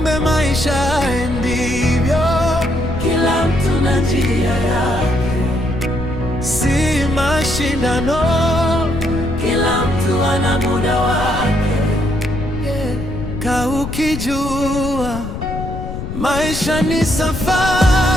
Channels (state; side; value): noise; left; rumble, 7 dB below the sound